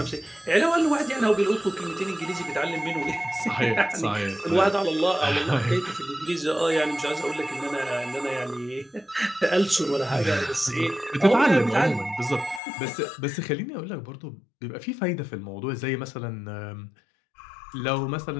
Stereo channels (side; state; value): right; drops out; at 12.6 s